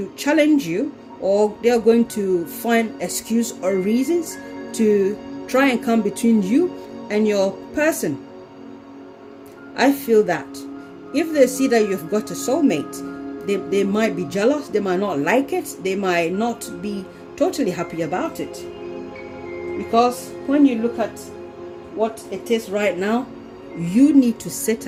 challenge you, or they are going to find excuse or reasons to try and come between you and your person. I feel that if they see that you've got a soulmate, they might be jealous, they might not like it, they might not be totally happy about it. Because when you look at what it is right now, you need to sit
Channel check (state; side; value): identical; both; correlation 1.00